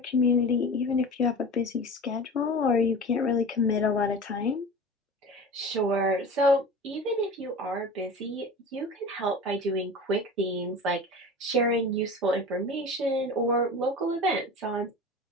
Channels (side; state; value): both; normal; correlation 0.35